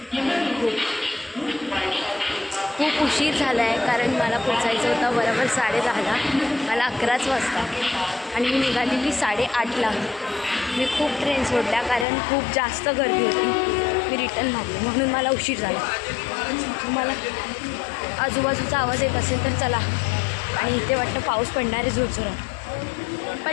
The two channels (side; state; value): right; drops out; at 12.1 s